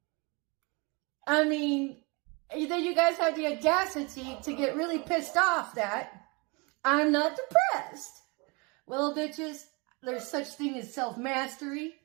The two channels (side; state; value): left; quieter; 29.2 dB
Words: I mean, then you guys have the audacity to get really pissed off that I'm not depressed. Well, bitches, there's such thing as self-mastery.